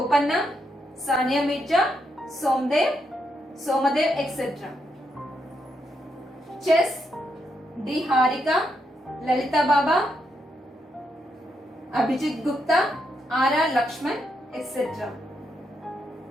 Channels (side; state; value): both; normal; correlation 0.80